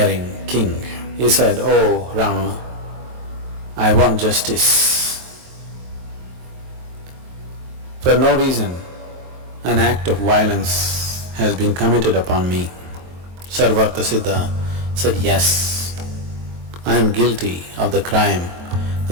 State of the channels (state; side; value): late; left; 23 ms